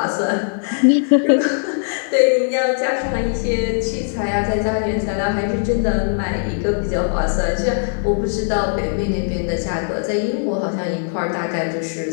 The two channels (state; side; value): silent; right; 62 dB below the other